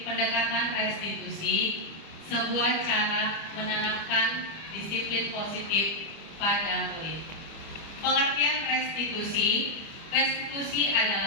pendekatan restitusi, sebuah cara menanamkan disiplin positif pada murid. Pengertian restitusi, restitusi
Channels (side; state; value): right; late; 25 ms